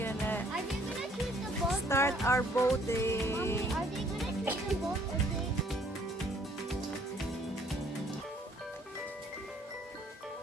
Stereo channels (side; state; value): both; normal; correlation 0.61